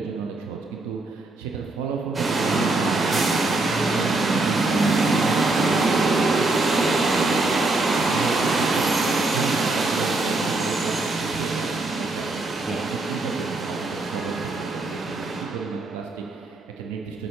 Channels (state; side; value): quieter; left; 3.1 dB